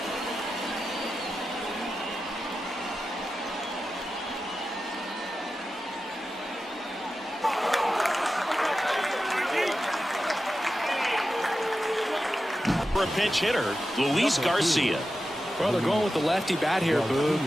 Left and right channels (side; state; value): both; normal; correlation 0.92